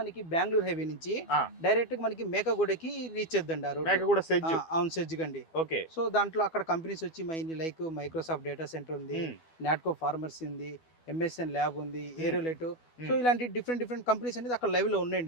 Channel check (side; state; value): right; late; 12 ms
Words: బెంగళూరు హైవే నుంచి డైరెక్ట్ గా మనకి మేకగూడకి రీచ్ చేద్దండి ఆ రోడ్. అవును, సెజ్ గండి. సో దాంట్లో అక్కడ కంపెనీస్ వచ్చి లైక్ మైక్రోసాఫ్ట్ డేటా సెంటర్ ఉంది, నాట్కో ఫార్మర్సీ ఉంది, ఎంఎస్ఎన్ ల్యాబ్ ఉంది, ఏరోలెట్. సో ఇలాంటి డిఫరెంట్ కంపెనీస్ అనేది అక్కడ లైవ్ లో